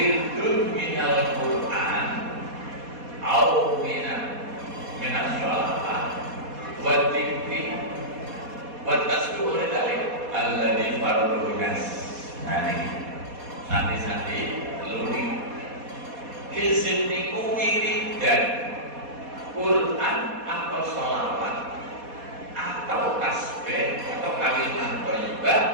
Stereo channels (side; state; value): left; late; 4.2 ms